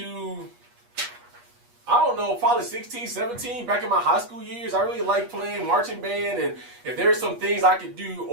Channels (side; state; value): left; late; 8.3 ms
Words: I don't know, probably 16, 17, back in my high school years. I really liked playing marching band, and if there's some things I could do